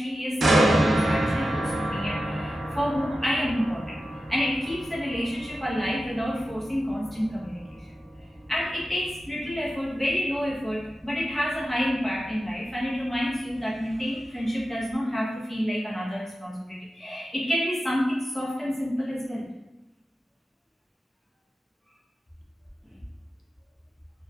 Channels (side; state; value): both; normal; correlation 0.92